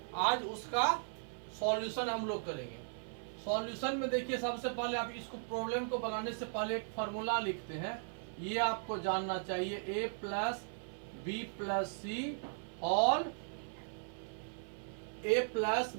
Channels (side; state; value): left; silent; 53 dB below the other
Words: आज उसका सॉल्यूशन हम लोग करेंगे। सॉल्यूशन में देखिए, सबसे पहले आप इसको प्रॉब्लम को बनाने से पहले एक फार्मूला लिखते हैं। ये आपको जानना चाहिए, a प्लस बी प्लस सी और a plus